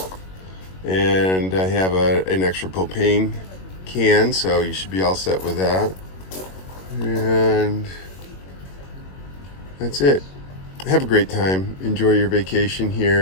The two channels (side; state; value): right; late; 21 ms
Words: and I have an extra propane can, so you should be all set with that. And that's it. Have a great time. Enjoy your vacation